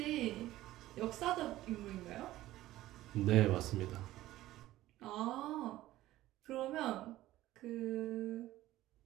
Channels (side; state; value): left; quieter; 15.5 dB